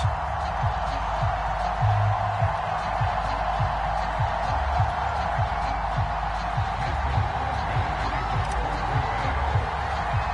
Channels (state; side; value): identical; both; correlation 1.00